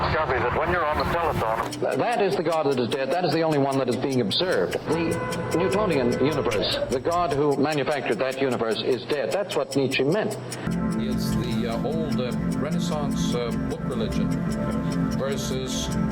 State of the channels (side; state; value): both; identical; correlation 1.00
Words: that when you're on the telephone... That is the God that is dead. That is the only one that is being observed. The Newtonian universe, the God who manufactured that universe is dead. That's what Nietzsche meant. It's the old Renaissance book religion versus